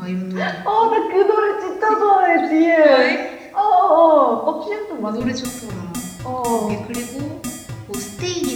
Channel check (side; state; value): both; identical; correlation 1.00